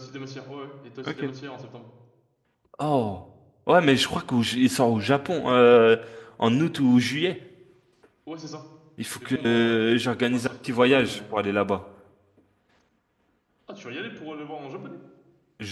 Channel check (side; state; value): both; identical; correlation 1.00